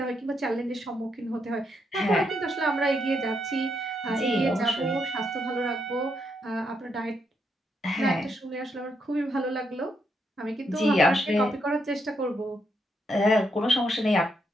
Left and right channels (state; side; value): normal; both; correlation 0.78